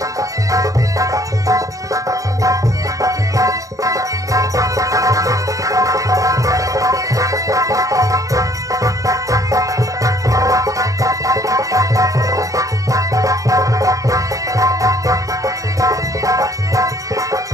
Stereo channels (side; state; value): left; late; 0.16 ms